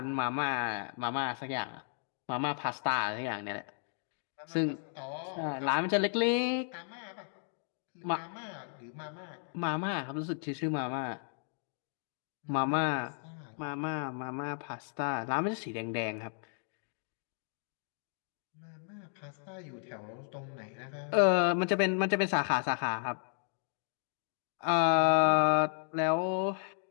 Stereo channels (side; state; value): right; silent; 55 dB below the other